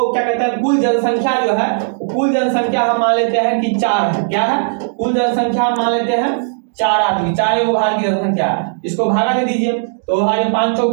क्या कहते हैं, कुल जनसंख्या जो है, कुल जनसंख्या हम मान लेते हैं कि 4 है। क्या है? कुल जनसंख्या हम मान लेते हैं 4 आदमी, 4 वो भारत की जनसंख्या है। इसको भागा दे दीजिए तो 5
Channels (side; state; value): left; silent; digital silence